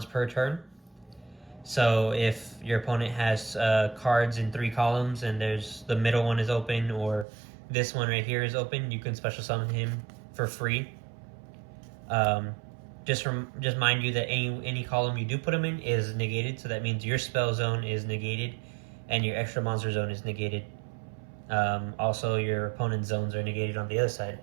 per turn. So if your opponent has cards in 3 columns and there's the middle one is open, or this one right here is open, you can special summon him for free. Just mind you that any column you do put him in is negated, so that means your spell zone is negated and your extra monster zone is negated. Also, your opponent's zones are negated on the other side.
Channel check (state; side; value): drops out; left; at 7.2 s